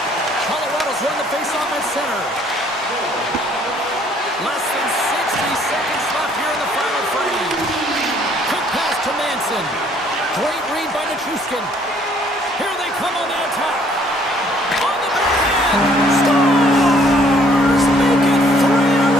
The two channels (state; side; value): normal; both; correlation 0.62